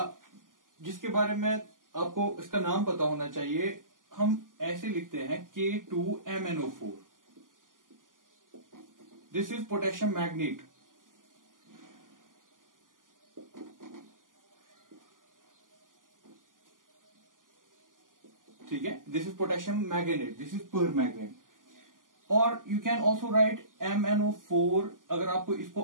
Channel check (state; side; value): late; left; 0.89 ms